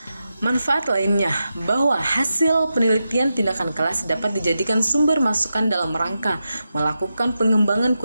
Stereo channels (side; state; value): both; inverted; correlation -0.89